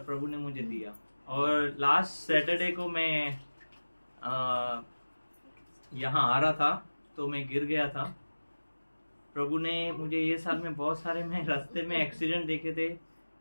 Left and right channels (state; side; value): inverted; both; correlation -1.00